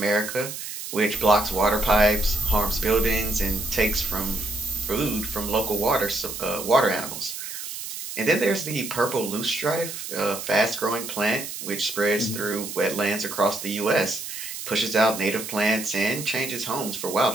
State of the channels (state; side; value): noise; right; hiss, 8 dB below the sound